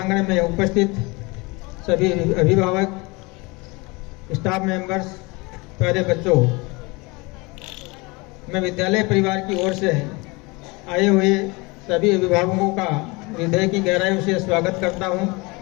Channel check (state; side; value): quieter; right; 26.0 dB